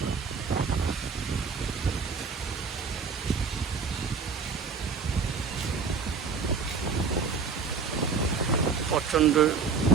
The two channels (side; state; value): left; quieter; 5.3 dB